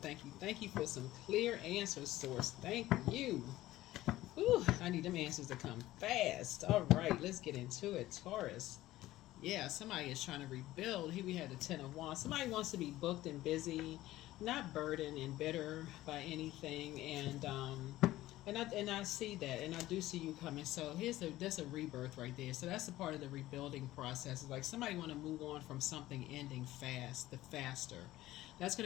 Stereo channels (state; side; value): quieter; right; 15.9 dB